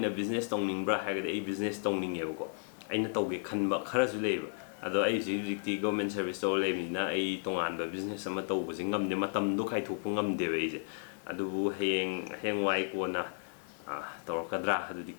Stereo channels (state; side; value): silent; right; digital silence